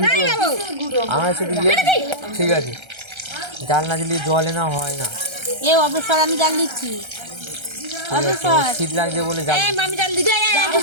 ভিডিও আমার শুধু ঠিক আছে জাল না দিলে জলে না হয় না এ অবসর আমি জাল দিচ্ছি ঠিক আছে, ওর শীত লাগছে বলে জাল এই মামি জাল দিতে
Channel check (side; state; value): left; late; 1.3 ms